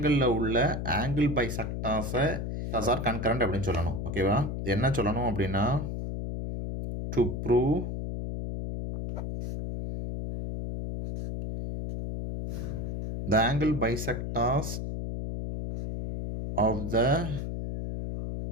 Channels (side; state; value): left; noise; hum, 4 dB below the sound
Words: உள்ள ஆங்கிள் பைசெக்டார்ஸை ஆர் கன்கரண்ட் அப்படின்னு சொல்லணும். ஓகேவா, என்ன சொல்லணும் அப்படின்னா to prove the angle bisectors of the